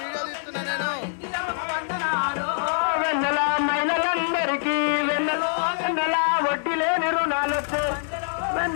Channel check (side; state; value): right; silent; digital silence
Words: వెన్నెల మహిళలందరికీ వెన్నెల వెన్నెల వడ్డీ లేని రుణాలొచ్చు